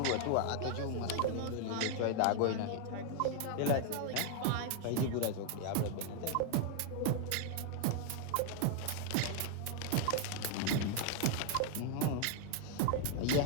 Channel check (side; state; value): both; different; correlation 0.00